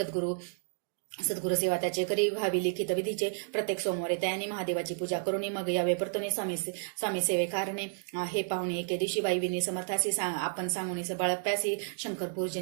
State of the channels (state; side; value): silent; left; digital silence